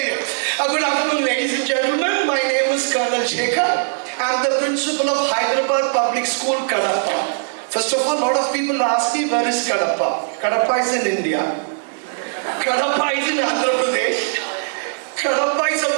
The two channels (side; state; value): left; silent; digital silence